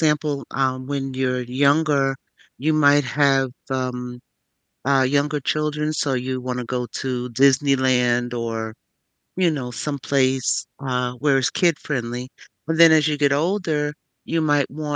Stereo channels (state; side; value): identical; both; correlation 1.00